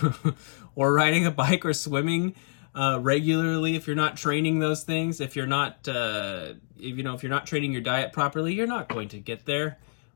or riding a bike or swimming regularly, if you're not training those things, if you're not if you're not training your diet properly, you're not going to get there.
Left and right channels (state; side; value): silent; right; digital silence